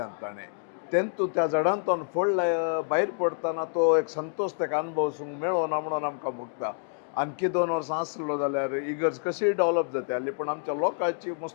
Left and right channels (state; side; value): silent; right; 59 dB below the other